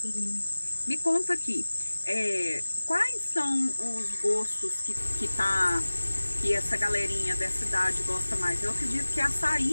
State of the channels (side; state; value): both; inverted; correlation -1.00